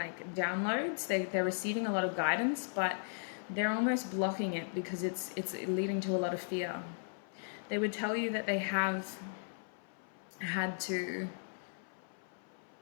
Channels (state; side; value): silent; right; 53 dB below the other